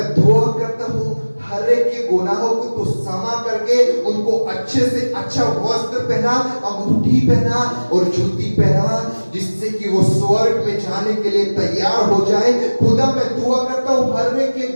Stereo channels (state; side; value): inverted; both; correlation -1.00